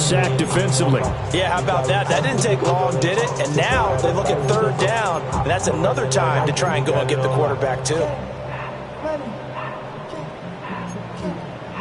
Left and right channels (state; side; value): identical; both; correlation 1.00